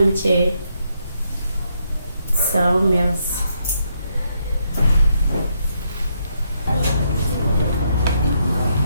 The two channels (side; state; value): both; inverted; correlation -0.77